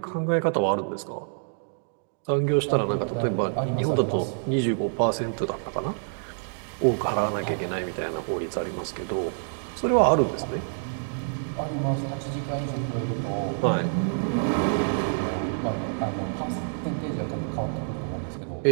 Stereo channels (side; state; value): left; silent; digital silence